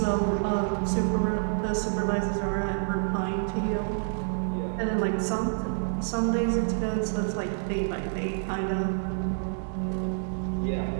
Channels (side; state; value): left; silent; 59 dB below the other